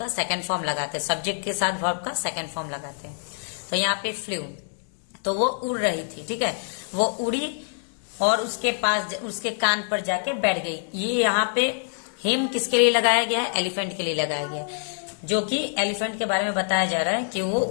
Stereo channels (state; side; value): silent; right; digital silence